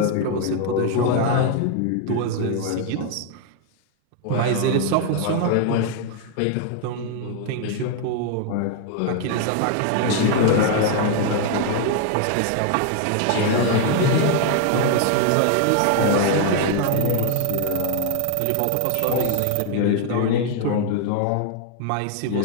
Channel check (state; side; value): different; both; correlation 0.00